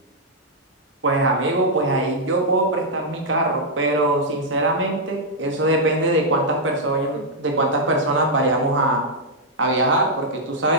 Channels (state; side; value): normal; both; correlation -0.06